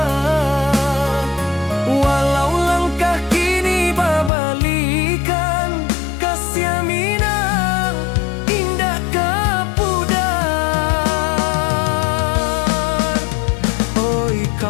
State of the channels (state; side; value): drops out; right; at 4.3 s